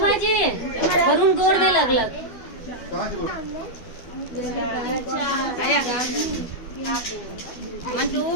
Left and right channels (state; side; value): late; right; 12 ms